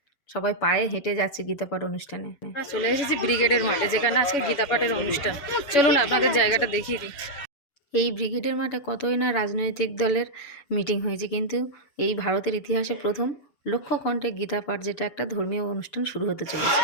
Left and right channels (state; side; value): late; right; 7.1 ms